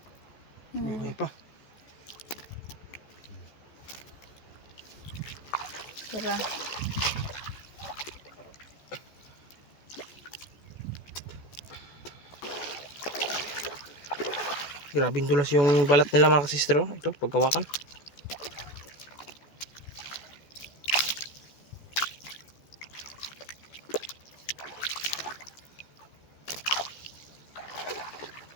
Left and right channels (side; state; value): right; late; 14 ms